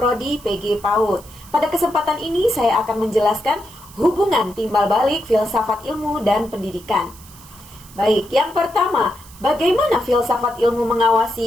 PG PAUD. Pada kesempatan ini saya akan menjelaskan hubungan timbal balik filsafat ilmu dan pendidikan. Baik, yang pertama, bagaimana filsafat ilmu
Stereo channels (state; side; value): noise; right; hiss, 21 dB below the sound